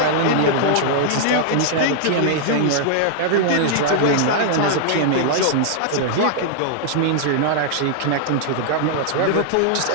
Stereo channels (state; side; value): different; both; correlation -0.01